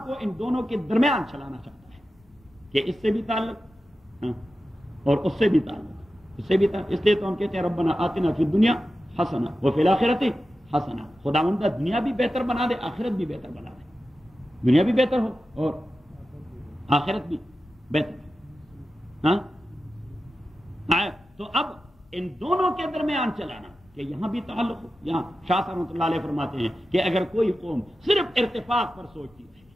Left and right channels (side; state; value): both; normal; correlation 0.92